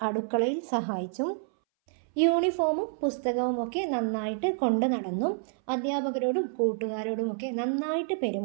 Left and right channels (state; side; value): silent; left; 59 dB below the other